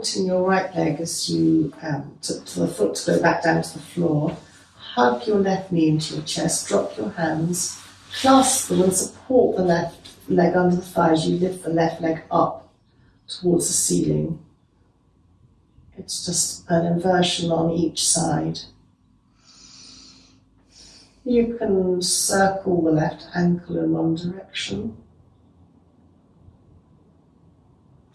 your right leg as you, to the foot to go back down to the floor. Hug your left knee into your chest, drop your hands, clasp them and support the left leg under the thighs. You lift the left leg up towards the ceiling. It's just an inversion on each side. You can circle the left ankle in one direction.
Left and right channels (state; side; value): identical; both; correlation 1.00